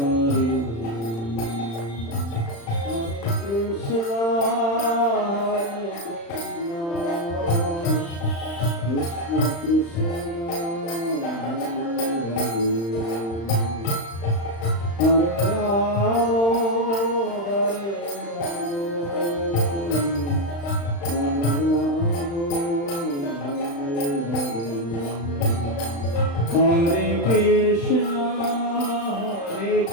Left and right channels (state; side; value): late; right; 35 ms